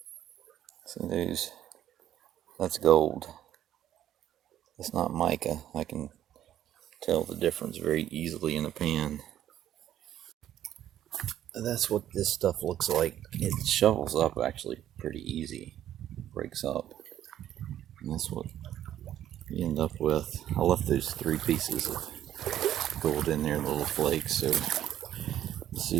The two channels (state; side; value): quieter; left; 11.6 dB